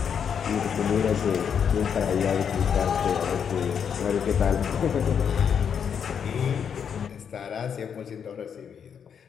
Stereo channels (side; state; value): right; quieter; 7.5 dB